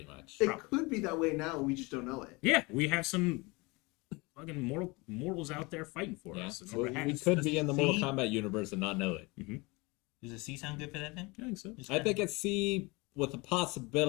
much. It could be that way now. We just don't know it. Yeah, we have some fucking mortals out there fighting for Yeah. us. in So order to we have- could be in the Mortal See? Kombat universe and not know it. Does a C sound good for that then? I think so. Just I think it's C with the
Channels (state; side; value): quieter; right; 25.7 dB